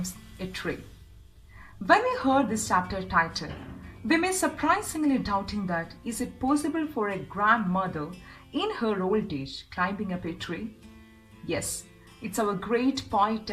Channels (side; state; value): both; identical; correlation 1.00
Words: a Tree. When we heard this chapter title, we may surprisingly doubting that is it possible for a grandmother in her old age climbing up a tree? Yes, it's our great poet